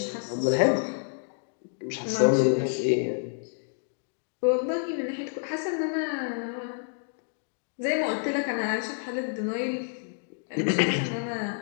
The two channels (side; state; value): right; silent; digital silence